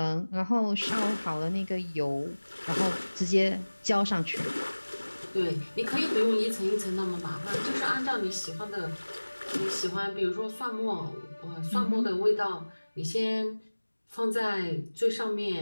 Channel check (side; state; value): both; inverted; correlation -1.00